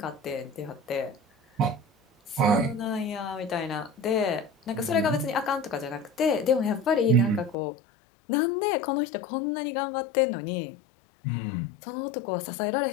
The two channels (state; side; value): drops out; right; at 7.6 s